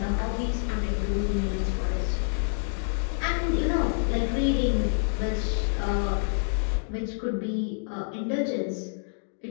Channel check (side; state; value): right; silent; digital silence